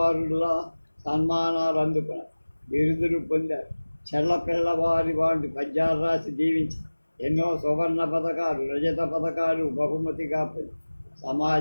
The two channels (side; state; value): both; inverted; correlation -1.00